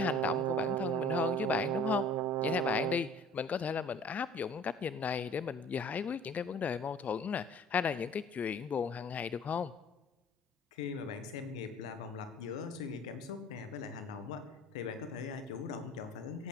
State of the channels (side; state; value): both; normal; correlation 0.49